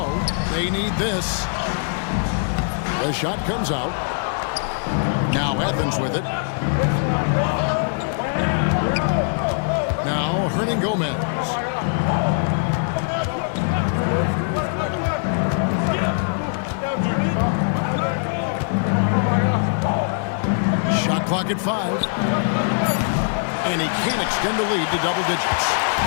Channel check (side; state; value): right; silent; digital silence